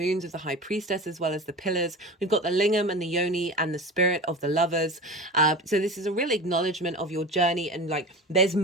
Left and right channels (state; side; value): normal; both; correlation 0.32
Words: of the high priestess, as well as the pillars. We've got the lingam and the yoni and the spirit of the lovers. So this is a real acknowledgement of your journey, and like there's